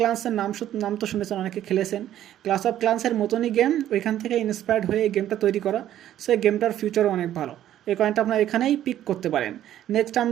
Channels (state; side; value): quieter; left; 11.9 dB